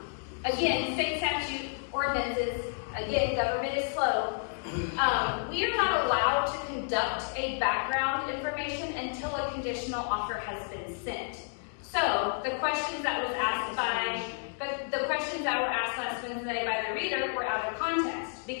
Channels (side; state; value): right; silent; 57 dB below the other